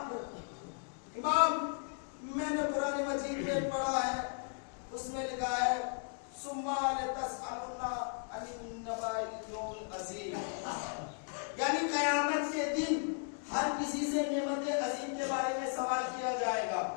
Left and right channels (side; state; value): right; silent; 54 dB below the other